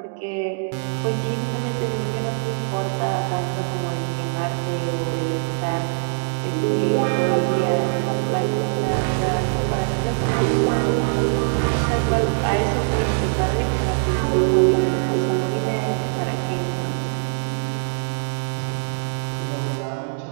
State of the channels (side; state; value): left; silent; digital silence